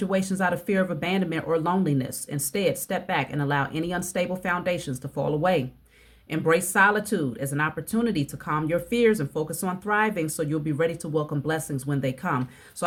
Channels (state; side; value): identical; both; correlation 1.00